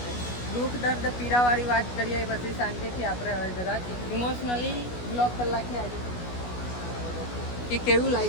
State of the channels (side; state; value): right; late; 16 ms